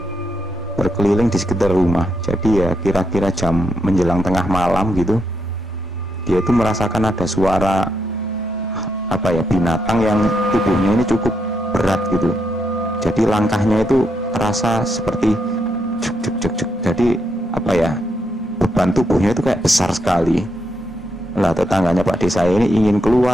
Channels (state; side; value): normal; both; correlation 0.80